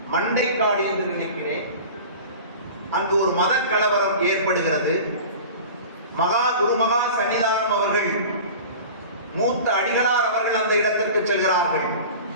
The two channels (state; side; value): inverted; both; correlation -0.37